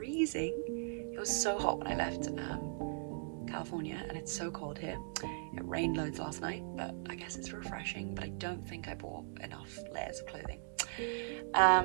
It was so hot when I left California and it's so cold here. It rained loads last night, but I guess it's refreshing, but I don't think I bought enough layers of clothing.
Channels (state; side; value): silent; left; digital silence